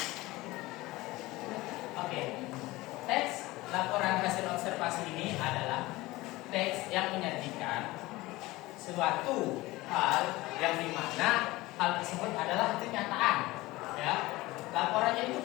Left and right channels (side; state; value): right; quieter; 19.7 dB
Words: Oke, teks laporan hasil observasi ini adalah teks yang menyajikan suatu hal yang dimana hal tersebut adalah kenyataan, ya. Laporannya itu